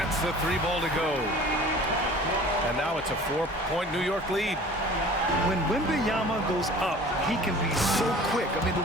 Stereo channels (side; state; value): both; normal; correlation 0.45